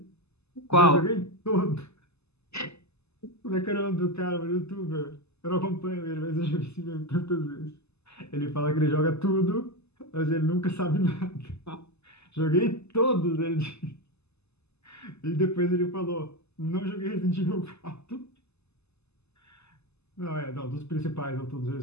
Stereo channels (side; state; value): right; late; 0.80 ms